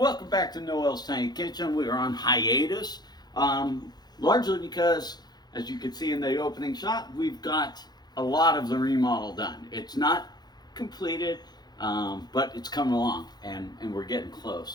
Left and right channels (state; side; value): late; right; 0.20 ms